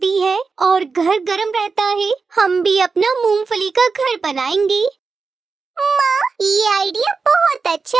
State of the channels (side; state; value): left; quieter; 4.7 dB